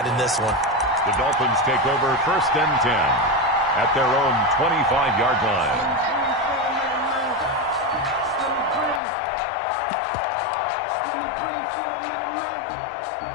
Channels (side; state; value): right; drops out; at 9.0 s